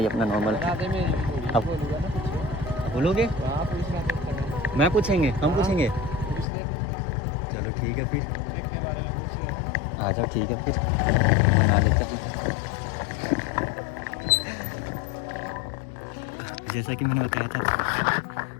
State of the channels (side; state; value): right; drops out; at 6.5 s